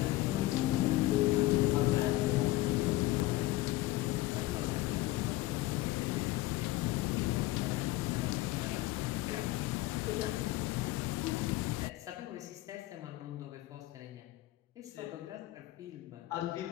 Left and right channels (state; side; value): quieter; right; 17.3 dB